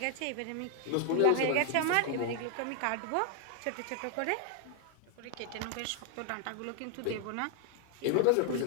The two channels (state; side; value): different; both; correlation 0.00